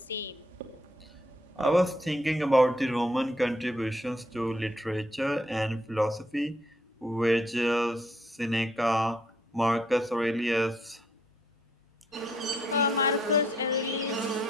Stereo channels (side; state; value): both; normal; correlation 0.69